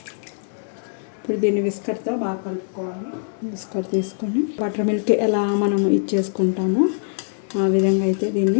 ఇప్పుడు దీన్ని విస్కర్తో బాగా కలుపుకోవాలి. విస్కర్ తీసుకొని బటర్ మిల్క్ ఎలా మనం ఇచ్చేసుకుంటామో ఆ విధంగా అయితే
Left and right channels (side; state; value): right; silent; digital silence